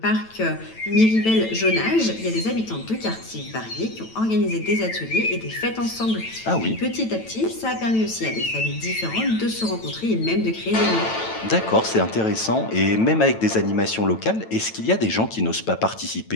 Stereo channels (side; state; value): right; late; 9.0 ms